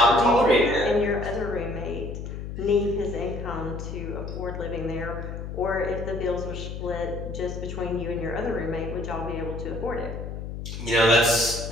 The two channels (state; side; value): noise; left; hum, 7 dB below the sound